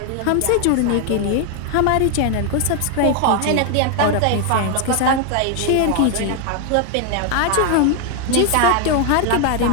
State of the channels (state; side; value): different; both; correlation 0.01